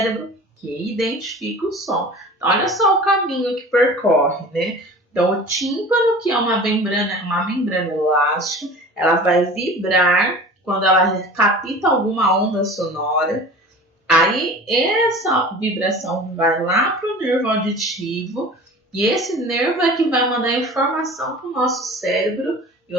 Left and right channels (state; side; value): normal; both; correlation 0.39